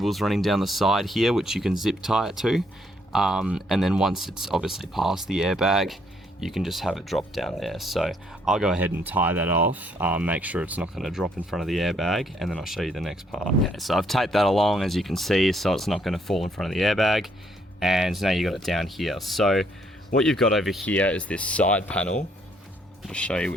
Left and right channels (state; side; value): normal; both; correlation 0.69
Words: running down the side here which you can zip tie it to, and then once it's obviously past the airbag, you can just have it drop down there. So I'll go ahead and tie that off, make sure it's not going to drop in front of the airbag, and then I'll show you the next part. Okay, so I've taped that along, as you can see, so it's not going to fall in front of the airbag, and now you got it down here. So what you've got over here is this side panel, I'll show you,